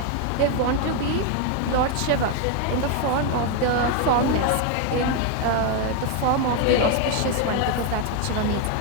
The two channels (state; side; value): different; both; correlation 0.01